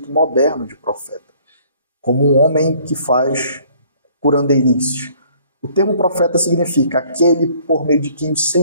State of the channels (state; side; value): inverted; both; correlation -0.59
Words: moderno de profeta, como um homem que faz curandeirices. O termo profeta significa aquele por meio de quem o